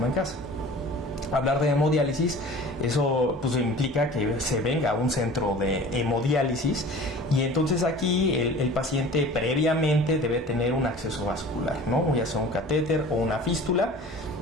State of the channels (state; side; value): normal; both; correlation 0.42